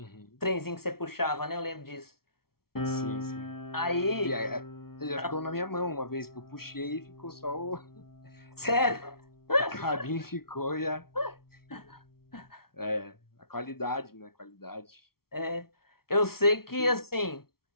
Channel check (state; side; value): late; right; 0.94 ms